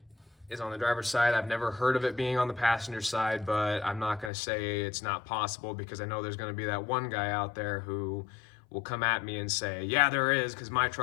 is on the driver's side. I've never heard of it being on the passenger side, but I'm not going to say it's not possible, because I know there's going to be that one guy out there who will come at me and say, yeah, there is, because my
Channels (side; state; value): right; drops out; at 4.3 s